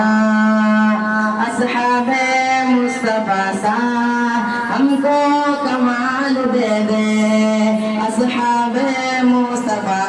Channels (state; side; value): identical; both; correlation 1.00